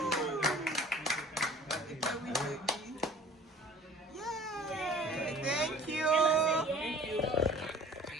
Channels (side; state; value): both; normal; correlation 0.48